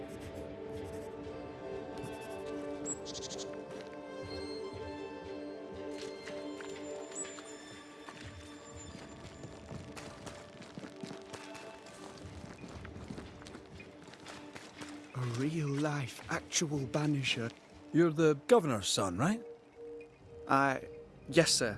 A real-life, actual Banisher. You're the Governor's son, right? Yes, sir.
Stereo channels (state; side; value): identical; both; correlation 1.00